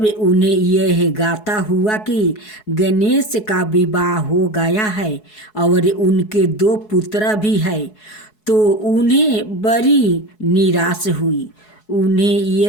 उन्हें यह गाता हुआ कि गणेश का विवाह हो गया है और उनके 2 पुत्र भी है, तो उन्हें बड़ी निराश हुई। उन्हें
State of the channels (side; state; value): right; late; 4.7 ms